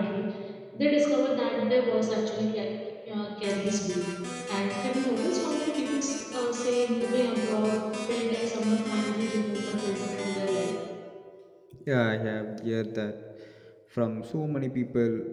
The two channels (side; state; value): both; identical; correlation 1.00